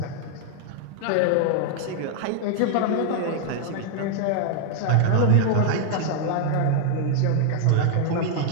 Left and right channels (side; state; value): both; different; correlation 0.00